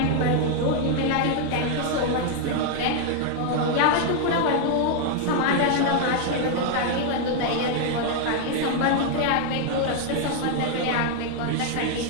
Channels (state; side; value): different; both; correlation 0.00